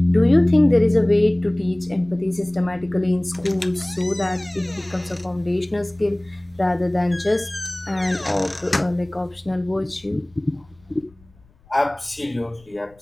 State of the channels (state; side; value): noise; left; rumble, 30 dB below the sound